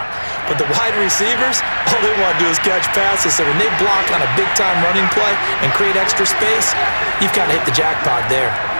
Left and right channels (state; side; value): inverted; both; correlation -1.00